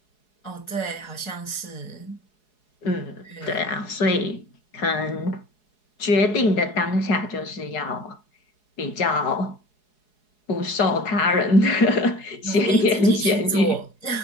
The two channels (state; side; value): late; right; 4.7 ms